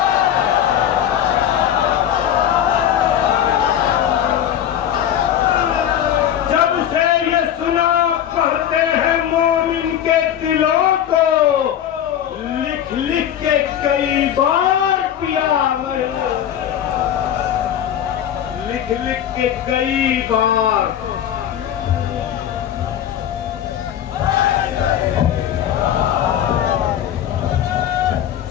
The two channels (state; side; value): quieter; right; 10.3 dB